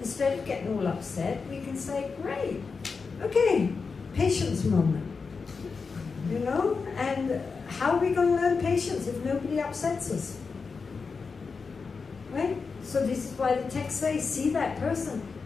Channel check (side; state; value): right; quieter; 4.9 dB